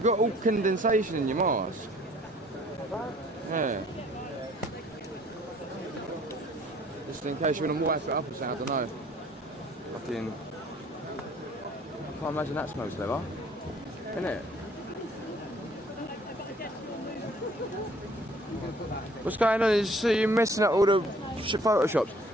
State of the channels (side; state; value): both; normal; correlation 0.56